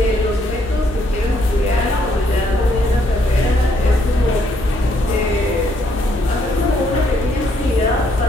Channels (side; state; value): both; normal; correlation 0.71